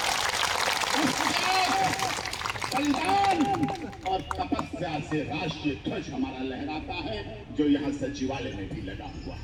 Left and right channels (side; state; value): both; identical; correlation 1.00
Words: बलिदान और तपस्या से राष्ट्रीय ध्वज हमारा लहराता है, जो यहाँ सचिवालय में भी लगा हुआ